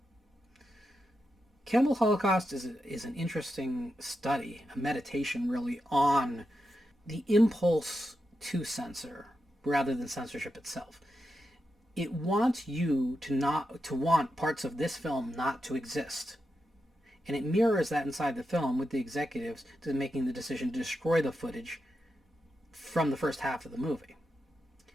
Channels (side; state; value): both; normal; correlation 0.87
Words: Cannibal Holocaust is an interesting study, a meditation really on the impulse to censor rather than censorship itself. It wants you to want parts of this film not to exist. And it mirrors that inside the film with the executives to making the decision to destroy the footage from the first half of the movie.